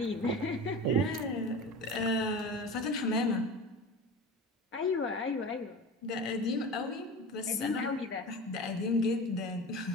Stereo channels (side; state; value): both; normal; correlation 0.31